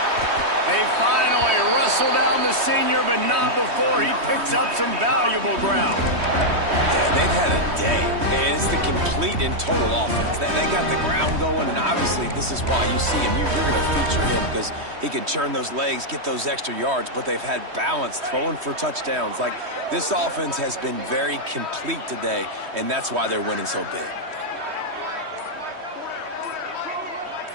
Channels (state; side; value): late; left; 3.1 ms